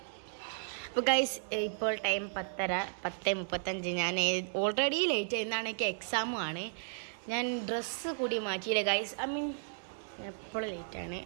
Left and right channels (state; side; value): silent; left; digital silence